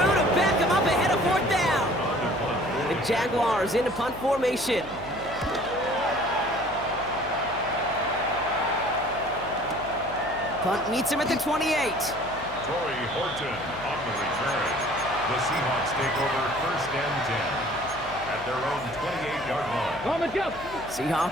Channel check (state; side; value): noise; left; hum, 16 dB below the sound